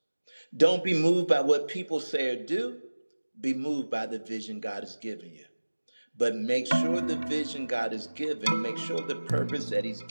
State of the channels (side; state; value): both; inverted; correlation -1.00